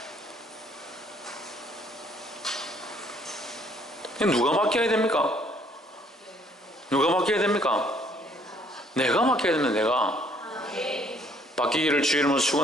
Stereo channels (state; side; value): normal; both; correlation 0.63